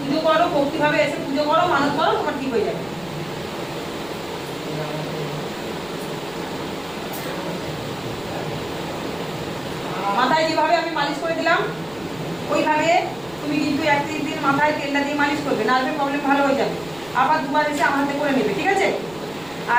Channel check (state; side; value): noise; right; rumble, 23 dB below the sound